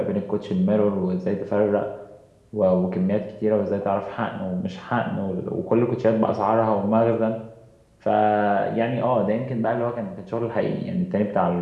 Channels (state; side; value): identical; both; correlation 1.00